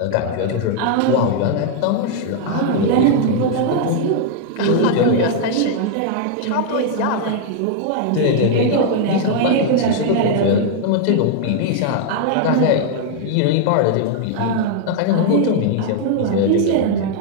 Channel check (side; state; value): both; different; correlation 0.00